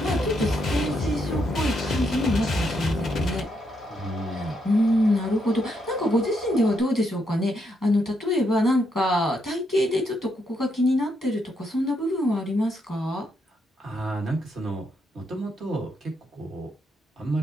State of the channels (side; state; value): both; normal; correlation 0.78